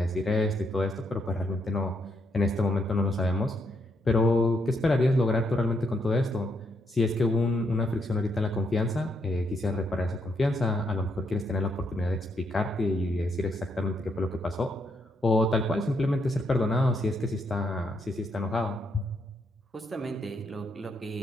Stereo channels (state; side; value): normal; both; correlation 0.76